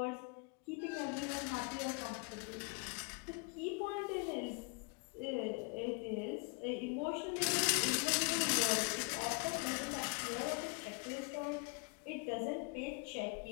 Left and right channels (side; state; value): right; quieter; 32.9 dB